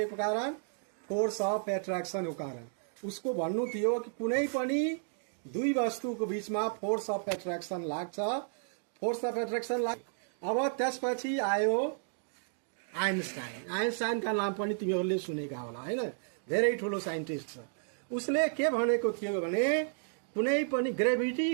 को कारण? फोर्स अफ एट्र्याक्सनको कारण। उसको भन्नु थियो कि कुनै पनि दुई वस्तुको बीचमा फोर्स अफ एट्र्याक्सन लाग्छ, फोर्स अफ एट्र्याक्सन लाग्छ। अब त्यसपछि आयो आइन्स्टाइन। आइन्स्टाइनका नाम पनि तिमीहरूले सुनेका होला हैन, धेरै ठुलो साइन्टिस्ट छ। उसले के भनेको थियो भने कुनै पनि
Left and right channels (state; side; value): silent; left; digital silence